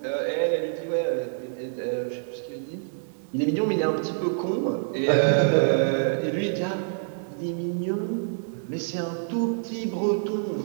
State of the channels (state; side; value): silent; left; digital silence